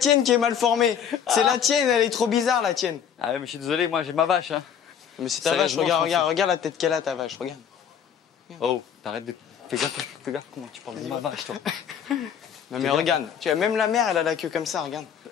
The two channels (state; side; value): quieter; right; 8.2 dB